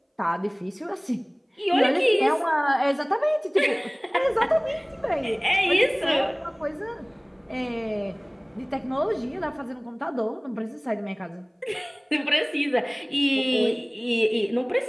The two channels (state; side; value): identical; both; correlation 1.00